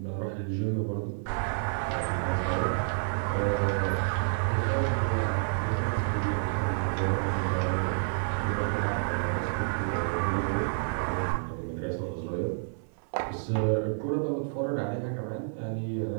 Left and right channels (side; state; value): left; silent; 58 dB below the other